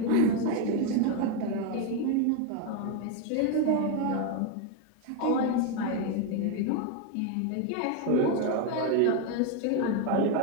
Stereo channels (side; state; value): both; different; correlation 0.02